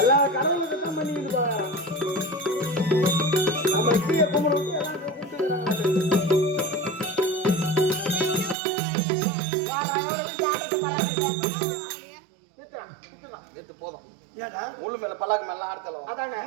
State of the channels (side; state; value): left; drops out; at 8.6 s